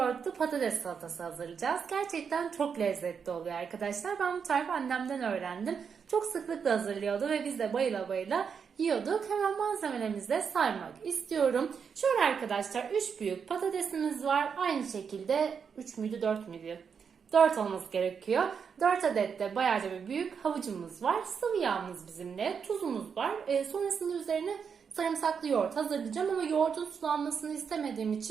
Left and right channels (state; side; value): quieter; left; 6.5 dB